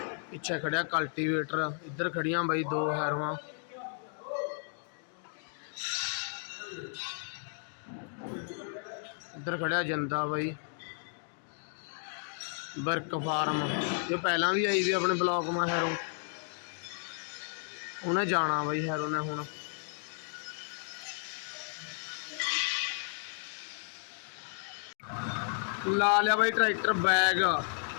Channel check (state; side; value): silent; right; 56 dB below the other